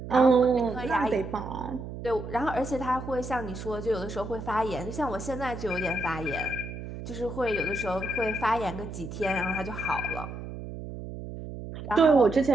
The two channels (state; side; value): noise; right; hum, 9 dB below the sound